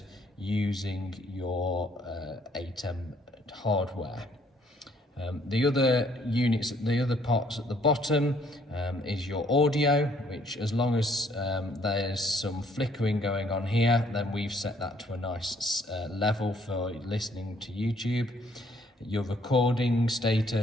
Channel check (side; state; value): both; normal; correlation 0.65